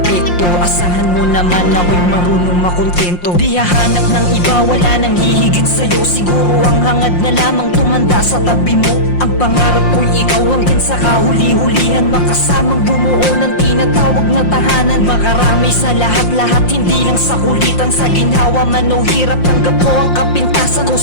Asahan mo naman ako'y marunong makontento. Di hahanap ng iba, wala nang hihigit sa'yo. Siguro ang hangad na lamang tumanda sa tabi mo. Ang pangarap ko'y ikaw hanggang sa kahuli-hulihan, makasamang bumuo ng tinatawag na tahanan. Makarami sa lahat-lahat, hindi lang sa kulitan. Sa ginhawa man o hirap, tanggap ko ang kapintasan ko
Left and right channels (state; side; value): late; right; 5.7 ms